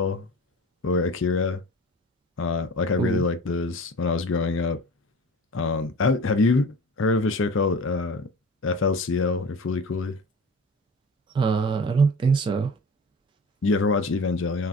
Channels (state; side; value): normal; both; correlation 0.37